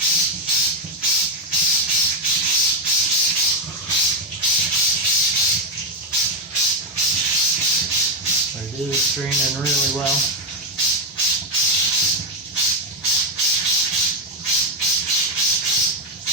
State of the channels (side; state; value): both; normal; correlation 0.04